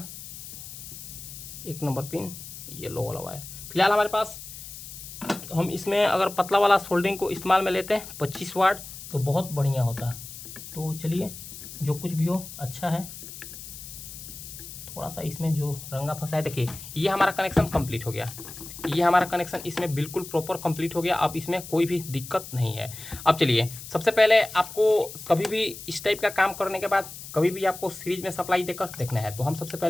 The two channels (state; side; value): noise; left; hiss, 12 dB below the sound